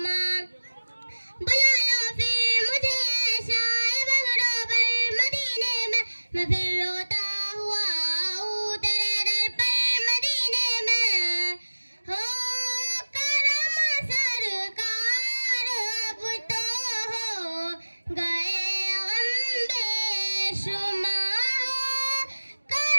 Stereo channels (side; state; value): both; inverted; correlation -1.00